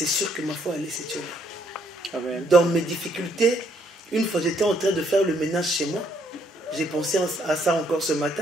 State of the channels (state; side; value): normal; both; correlation 0.69